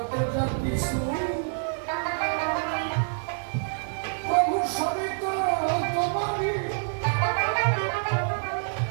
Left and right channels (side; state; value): left; silent; digital silence